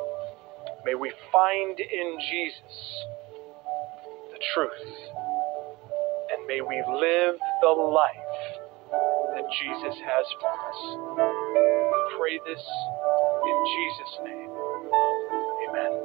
May we find in Jesus the truth, and may we live the life that Jesus has for us. We pray this in Jesus' name. Amen.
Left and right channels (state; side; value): quieter; left; 22.0 dB